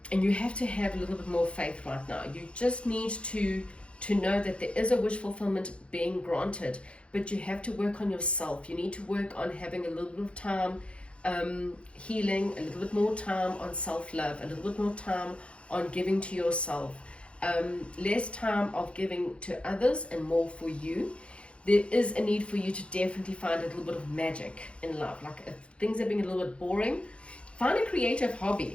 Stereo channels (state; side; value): late; right; 0.060 ms